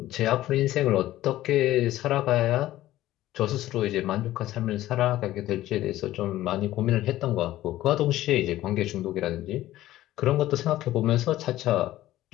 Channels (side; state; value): right; quieter; 14.9 dB